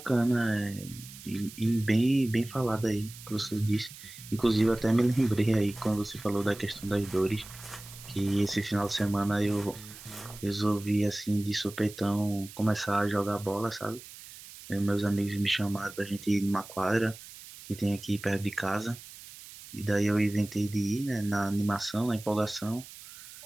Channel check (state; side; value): noise; right; hiss, 16 dB below the sound